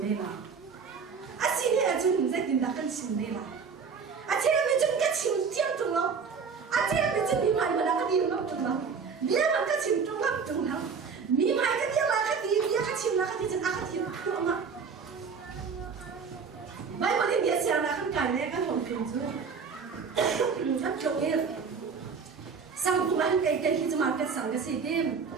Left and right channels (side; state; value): left; quieter; 5.7 dB